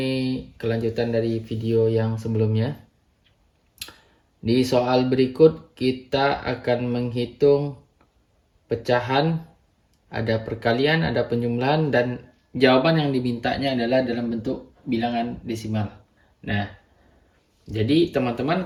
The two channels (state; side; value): identical; both; correlation 1.00